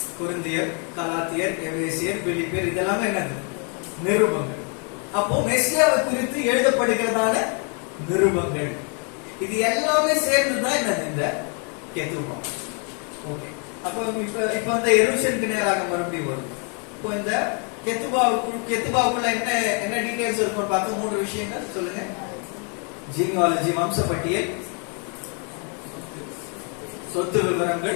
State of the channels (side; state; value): right; quieter; 38.4 dB